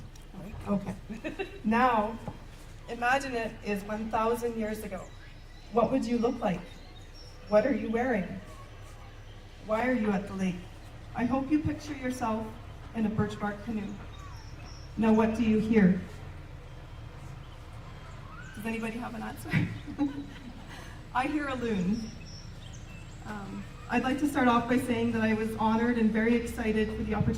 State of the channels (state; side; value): identical; both; correlation 1.00